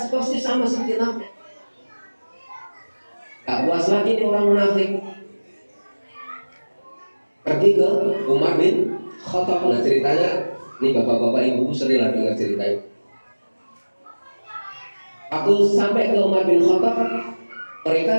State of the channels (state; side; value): inverted; both; correlation -1.00